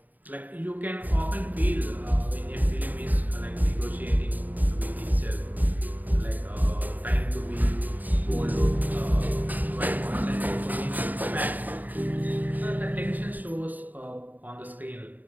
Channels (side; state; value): left; late; 0.084 ms